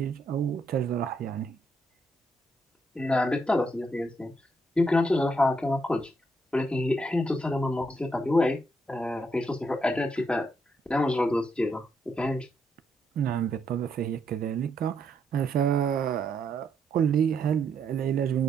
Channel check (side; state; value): both; normal; correlation 0.76